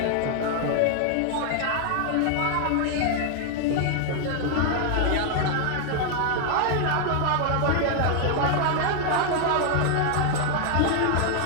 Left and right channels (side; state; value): both; different; correlation 0.00